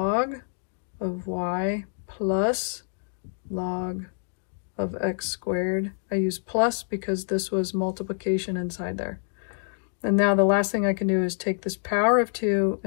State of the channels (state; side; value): silent; right; digital silence